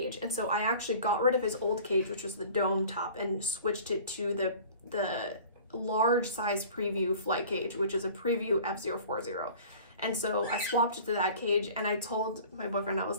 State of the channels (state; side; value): inverted; both; correlation -0.45